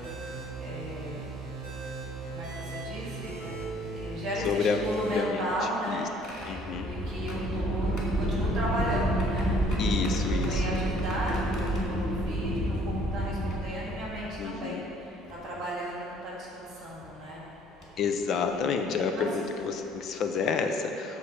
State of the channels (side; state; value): both; normal; correlation 0.58